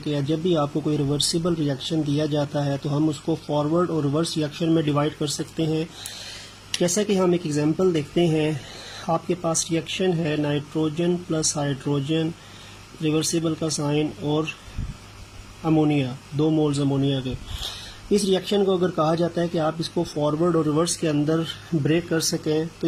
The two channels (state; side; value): identical; both; correlation 1.00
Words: जब भी आपको कोई रिवर्सिबल रिएक्शन दिया जाता है तो हम उसको फॉरवर्ड और रिवर्स रिएक्शन में डिवाइड कर सकते हैं। जैसा कि हम एक एग्जांपल देखते हैं, आपके पास रिएक्शन है नाइट्रोजन प्लस हाइड्रोजन, रिवर्सिबल का साइन, और अमोनिया, 2 मोल्स अमोनिया के। इस रिएक्शन को अगर कहा जाता है कि आप इसको फॉरवर्ड और रिवर्स के अंदर ब्रेक कर सकें, तो